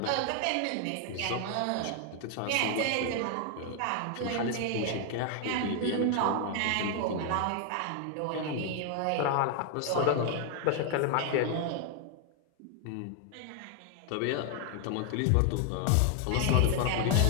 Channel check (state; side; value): different; both; correlation 0.00